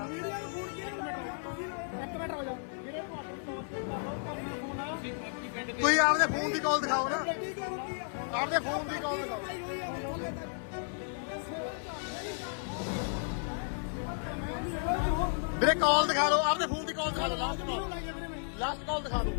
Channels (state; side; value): silent; right; 56 dB below the other